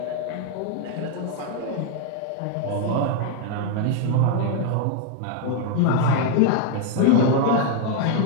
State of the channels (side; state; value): both; different; correlation 0.00